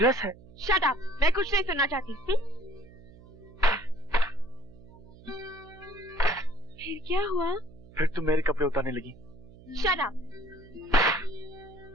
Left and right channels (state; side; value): noise; right; hum, 21 dB below the sound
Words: है। शट अप, मैं कुछ नहीं सुनना चाहती। फिर क्या हुआ? फिर तुम मेरे कपड़े उतारने लगी। Shut up.